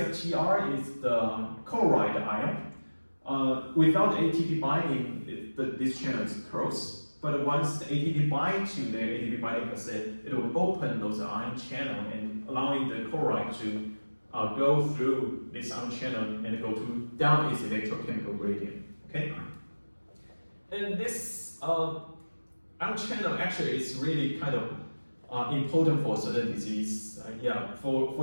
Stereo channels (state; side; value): inverted; both; correlation -1.00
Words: is the chloride ion. Without ATP binding, this channel is closed. But once the ATP binds to the ATP binding cassette, it will open those ion channel and allowing the chloride to go through this ion channel and go down its electrochemical gradient. Okay, and this ion channel actually is really kind of important for certain disease.